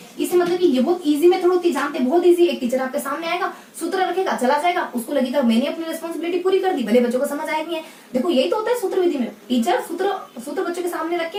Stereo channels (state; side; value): identical; both; correlation 1.00